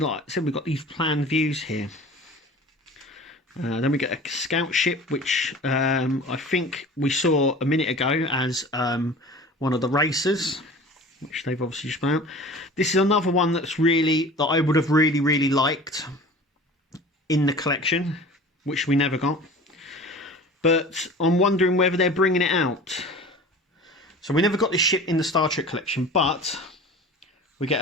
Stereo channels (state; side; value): normal; both; correlation 0.40